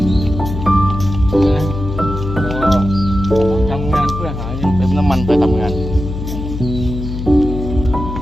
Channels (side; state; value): left; noise; hum, 6 dB below the sound